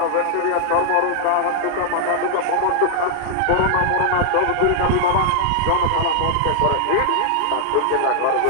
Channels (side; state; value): both; different; correlation -0.01